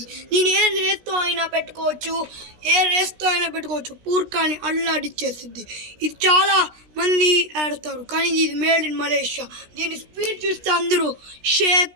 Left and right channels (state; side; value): late; left; 16 ms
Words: నేను ఏ రేస్తో అయినా పెట్టుకోవచ్చు, పూర్కాని అల్లాడిచ్చేస్తుంది. ఇది చాలా మంది ఆడతారు, కానీ ఇది మేడ్ ఇన్ మలేషియా. దీని స్పీడ్ చూస్తే అందరూ షేక్